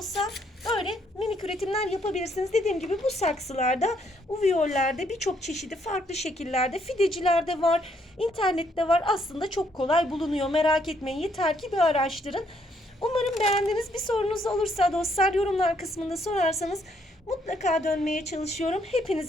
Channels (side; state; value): both; normal; correlation 0.71